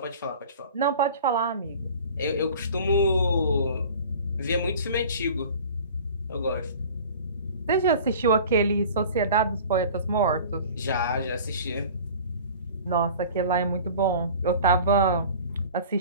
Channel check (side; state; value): both; inverted; correlation -0.43